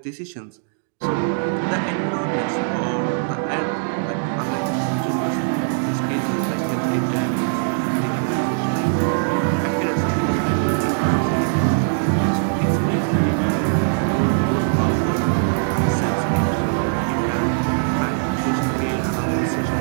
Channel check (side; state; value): left; silent; digital silence